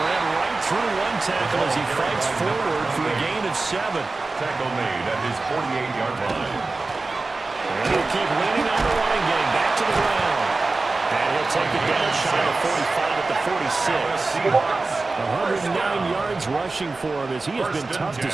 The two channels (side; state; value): left; quieter; 3.5 dB